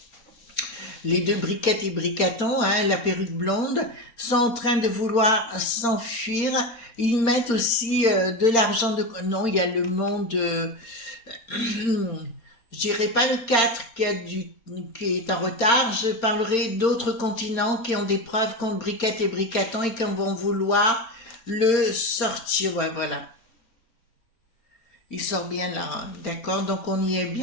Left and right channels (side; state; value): right; late; 4.4 ms